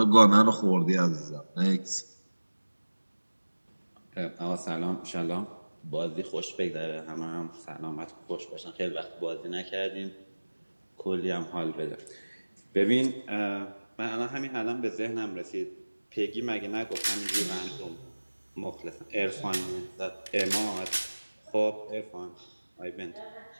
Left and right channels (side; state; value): both; inverted; correlation -1.00